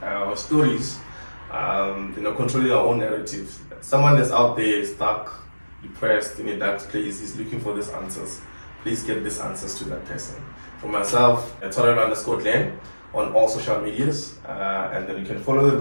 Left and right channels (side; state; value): both; inverted; correlation -1.00